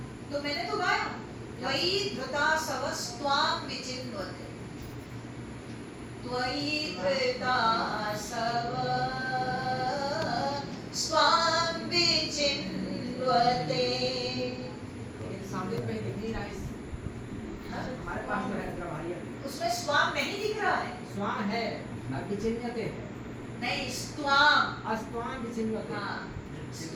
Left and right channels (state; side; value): identical; both; correlation 1.00